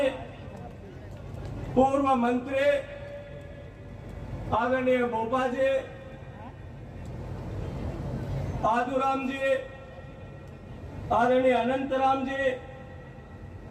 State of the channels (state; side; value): identical; both; correlation 1.00